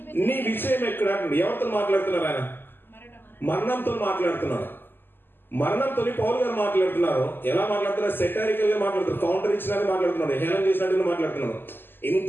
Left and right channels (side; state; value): right; late; 0.097 ms